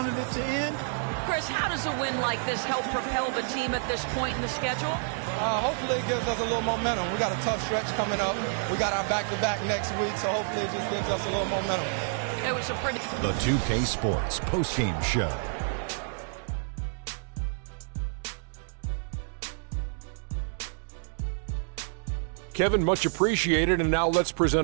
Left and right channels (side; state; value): left; silent; 59 dB below the other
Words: it to end. Chris, how does a win like this help propel the team at this point in the schedule? Hopefully it gives us a little momentum. We got a tough stretch coming up. We got our back-to-back next week, so hopefully it just gives us a little momentum. It was a pretty... The 2K Sports postgame show. Kevin, much appreciated, and now let's